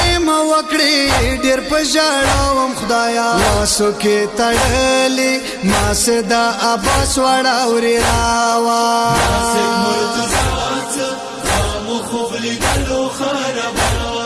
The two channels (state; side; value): identical; both; correlation 1.00